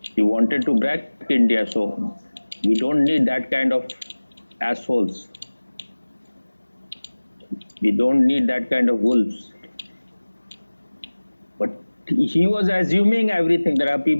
He wanted to break India, so we don't need that kind of assholes. We don't need that kind of wolves. But he was assuming everything. There are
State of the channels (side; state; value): both; inverted; correlation -1.00